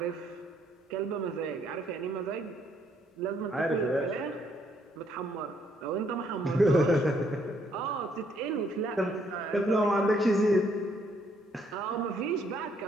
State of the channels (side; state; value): both; normal; correlation 0.69